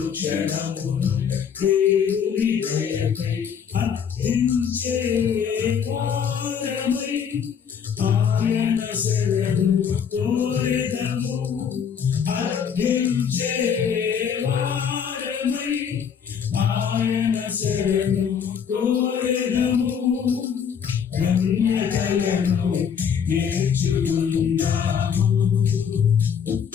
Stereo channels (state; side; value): quieter; right; 7.4 dB